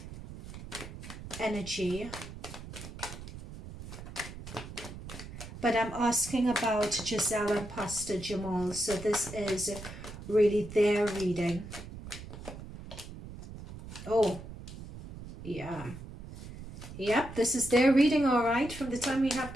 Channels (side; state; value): right; noise; rumble, 12 dB below the sound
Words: energy. But I'm asking about Gizelle and Pastor Jamal. So this is really their reading. Oh, yeah. Yep, this is their reading, all right. From the time we have